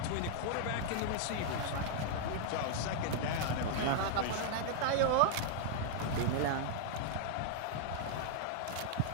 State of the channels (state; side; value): different; both; correlation -0.01